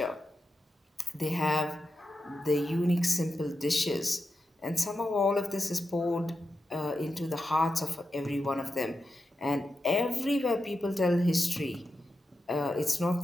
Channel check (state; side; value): normal; both; correlation 0.89